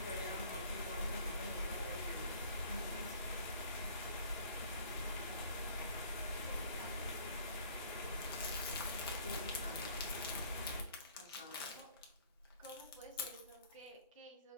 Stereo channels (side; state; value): both; inverted; correlation -0.54